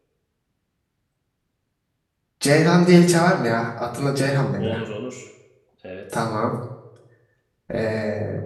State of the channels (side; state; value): both; identical; correlation 1.00